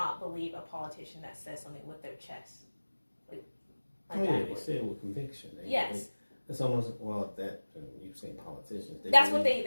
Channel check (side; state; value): both; inverted; correlation -1.00